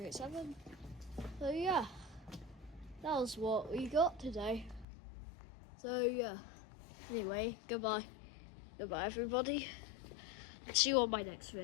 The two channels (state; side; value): drops out; right; at 4.9 s